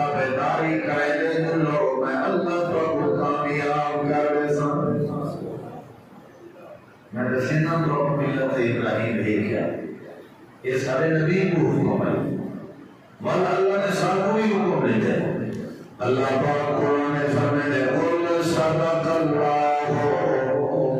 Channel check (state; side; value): identical; both; correlation 1.00